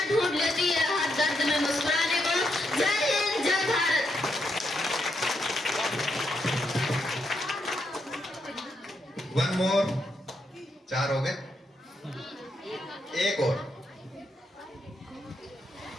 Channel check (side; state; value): both; normal; correlation 0.80